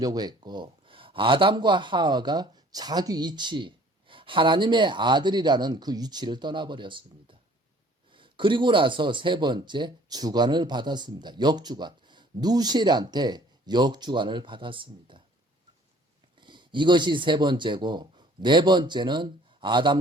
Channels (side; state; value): both; normal; correlation 0.55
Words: 했고 아담과 하와가 자기 위치, 하나님의 아들이라는 그 위치를 떠나버렸습니다. 그리고 나서 세 번째, 주관을 받았습니다. 역주관. 누시엘한테 역주관을 받았습니다. 이것이 세 번째고 네 번째는